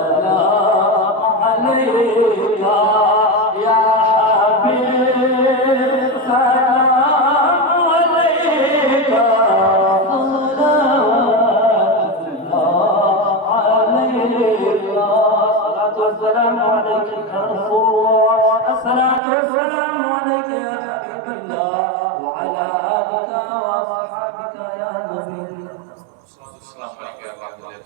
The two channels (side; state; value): left; drops out; at 19.2 s